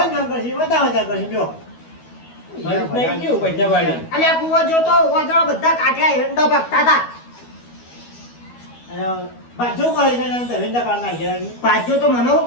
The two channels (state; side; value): late; right; 12 ms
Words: ઘર કરશે બધા કરશે જો ફરી નહીં ગયું પૈસા વાળી. અલ્યા કુવો જોતો વાદળો બધા કાઢ્યા હેંડો ભાગતા હતા. અને બાજુ કરી દે ધંધા કાઢ નાખ્યા પાછો તો મને હું